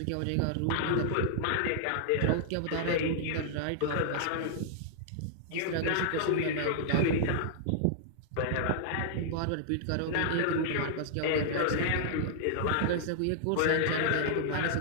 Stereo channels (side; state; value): both; different; correlation -0.01